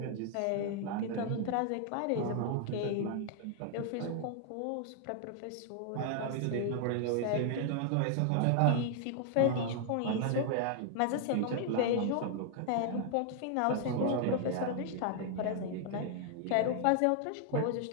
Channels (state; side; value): different; both; correlation 0.00